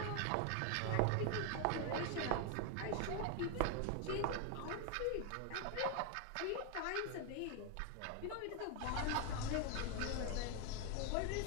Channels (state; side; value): different; both; correlation 0.01